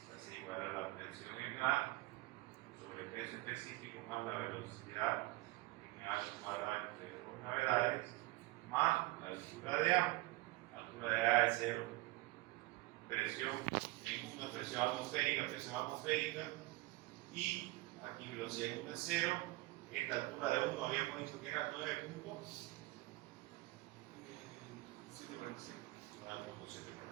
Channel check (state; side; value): quieter; left; 21.2 dB